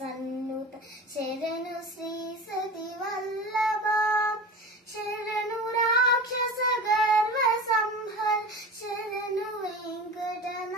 శరణు శ్రీ సతి వల్లభ శరణు రాక్షస గర్వ సంహర శరణు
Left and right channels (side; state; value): both; normal; correlation 0.32